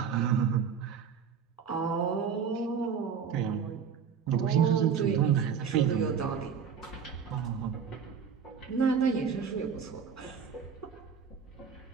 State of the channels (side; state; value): left; quieter; 6.9 dB